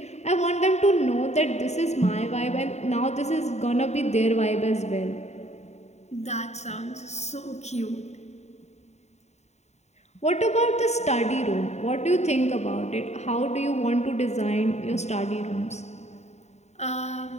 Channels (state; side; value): late; right; 0.32 ms